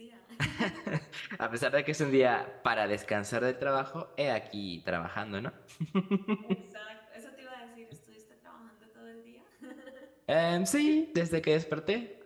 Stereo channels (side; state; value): both; identical; correlation 1.00